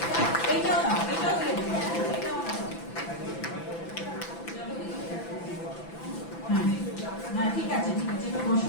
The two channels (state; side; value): late; right; 6.0 ms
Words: এইটাও দাও, এটাও দিয়ে দেবো, এটাও দাও। হ্যাঁ হ্যাঁ, ঠিক আছে ঠিক আছে, এবার